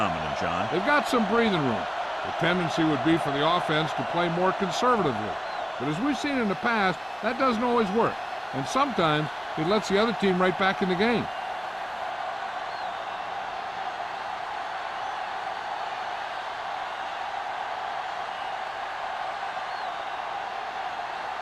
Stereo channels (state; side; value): identical; both; correlation 1.00